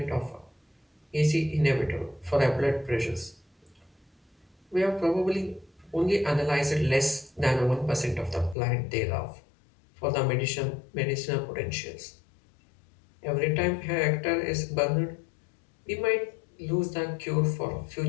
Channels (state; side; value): drops out; right; at 8.6 s